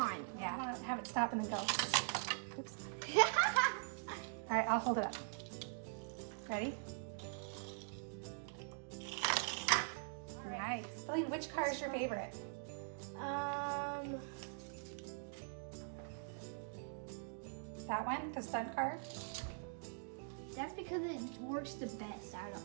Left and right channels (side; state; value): left; silent; digital silence